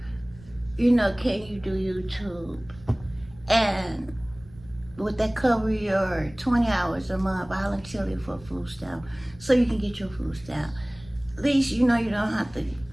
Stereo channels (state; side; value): noise; right; rumble, 22 dB below the sound